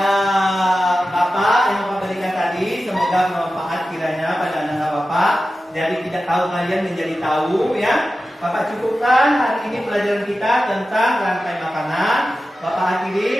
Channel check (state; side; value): normal; both; correlation 0.93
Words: Bapak yang Bapak berikan tadi, semoga bermanfaat kiranya pada anak Bapak. Dari tidak tahu kalian menjadi tahu, ya. Bapak cukupkan hari ini pelajaran kita tentang rantai makanan. Bapak